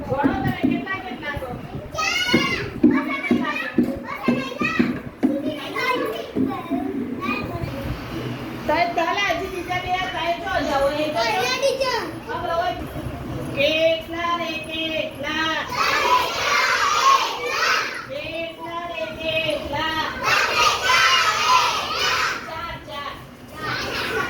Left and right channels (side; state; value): both; identical; correlation 1.00